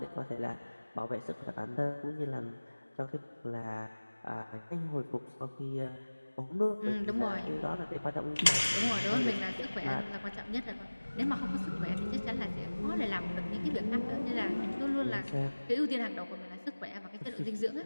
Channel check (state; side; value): inverted; both; correlation -1.00